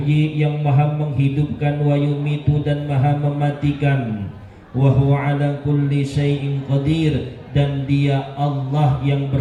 yang maha menghidupkan, wa yumitu, dan maha mematikan, wa huwa ala kulli syai'in qadir, dan dia Allah yang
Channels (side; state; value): both; identical; correlation 1.00